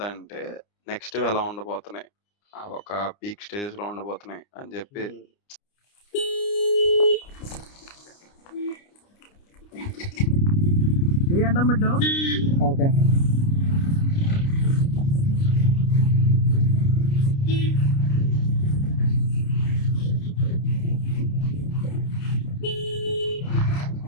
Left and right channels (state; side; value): late; right; 29 ms